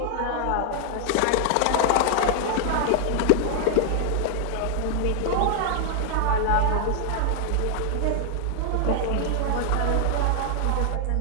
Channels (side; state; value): both; different; correlation 0.00